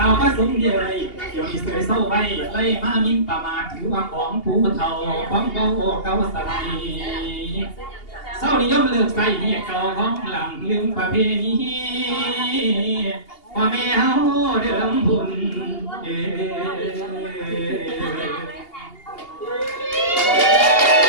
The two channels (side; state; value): right; late; 2.8 ms